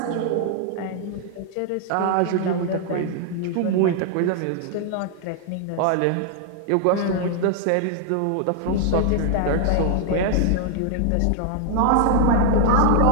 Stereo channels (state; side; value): different; both; correlation 0.00